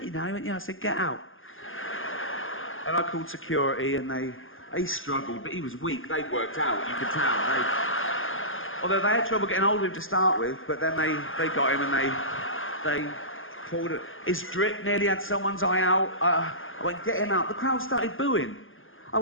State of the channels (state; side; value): late; right; 0.59 ms